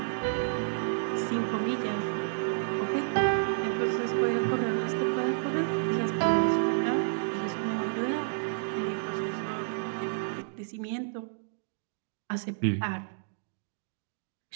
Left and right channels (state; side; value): silent; left; digital silence